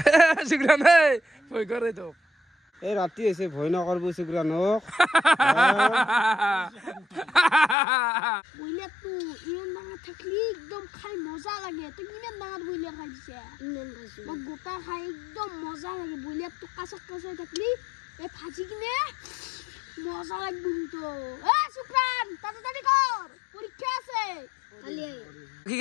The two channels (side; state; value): right; drops out; at 7.8 s